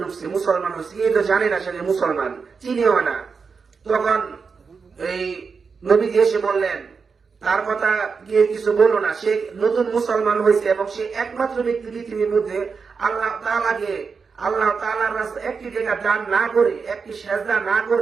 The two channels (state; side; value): quieter; left; 5.3 dB